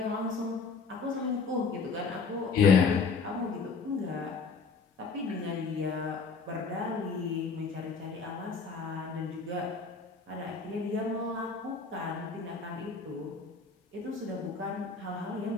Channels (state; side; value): quieter; right; 4.8 dB